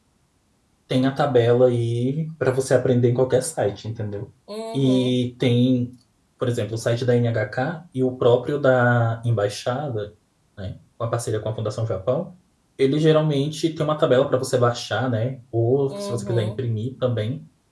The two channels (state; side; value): identical; both; correlation 1.00